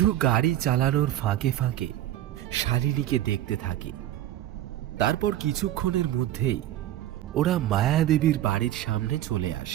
গাড়ি চালানোর ফাঁকে ফাঁকে শালিনীকে দেখতে থাকে। তারপর কিছুক্ষণের মধ্যেই ওরা মায়াদেবীর বাড়ির সামনে চলে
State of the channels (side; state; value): left; quieter; 13.0 dB